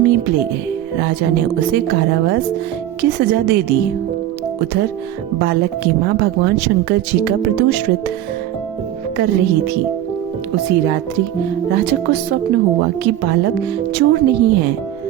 ले गए। राजा ने उसे कारावास की सजा दे दी। उधर बालक की माँ भगवान शंकर जी का प्रदोष व्रत कर रही थी। उसी रात्रि राजा को स्वप्न हुआ कि बालक चोर नहीं है,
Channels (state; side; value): quieter; left; 12.3 dB